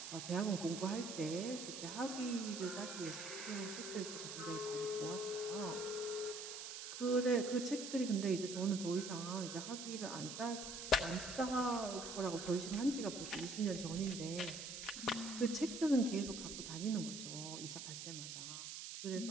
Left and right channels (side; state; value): right; noise; hiss, 7 dB below the sound